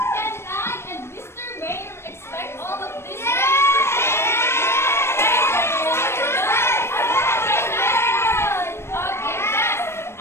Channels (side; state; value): right; late; 0.12 ms